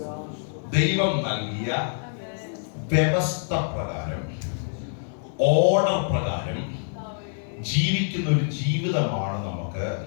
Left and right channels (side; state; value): right; silent; digital silence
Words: ദൈവം നൽകിയ വ്യവസ്ഥ പ്രകാരം, ഓർഡർ പ്രകാരം ജീവിക്കുന്ന ഒരു ജീവിതമാണ് നമുക്ക്